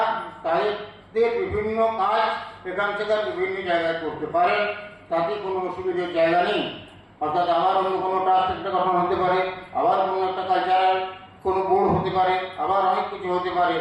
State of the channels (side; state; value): both; identical; correlation 1.00